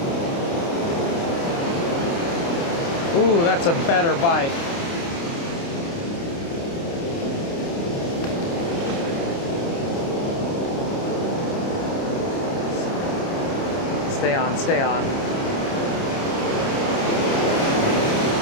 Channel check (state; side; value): late; right; 29 ms